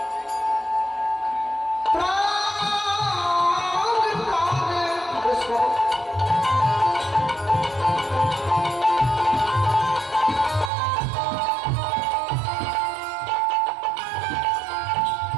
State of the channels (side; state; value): left; drops out; at 10.7 s